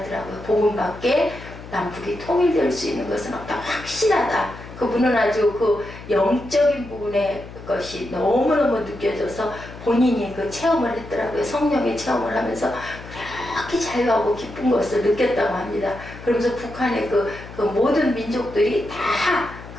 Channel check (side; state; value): left; noise; hum, 15 dB below the sound